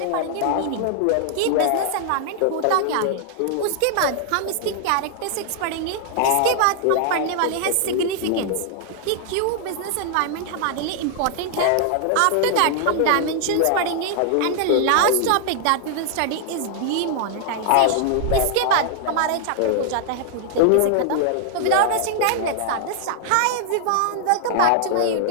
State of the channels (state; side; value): different; both; correlation 0.00